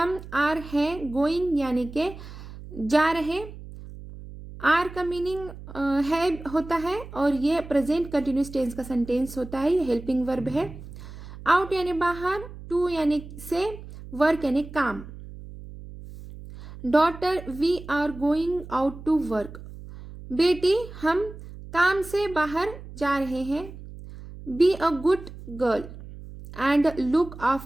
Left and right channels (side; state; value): right; noise; hum, 14 dB below the sound